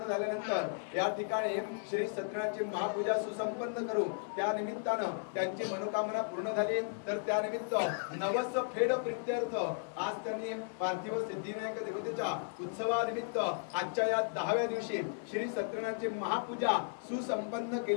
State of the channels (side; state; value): right; silent; digital silence